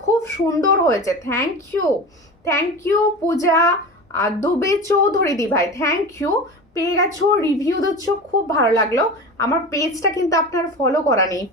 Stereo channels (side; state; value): both; normal; correlation 0.30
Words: খুব সুন্দর হয়েছে, থ্যাংক ইউ পূজা দুবে চৌধুরী দি ভাই, থ্যাংক ইউ। পেয়ে গেছো, রিভিউ দিচ্ছ, খুব ভালো লাগলো। আমার পেজটা কিন্তু আপনার ফলো করা নেই,